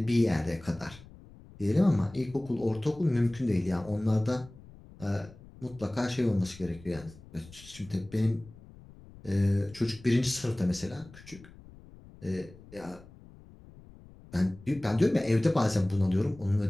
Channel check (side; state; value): left; noise; rumble, 21 dB below the sound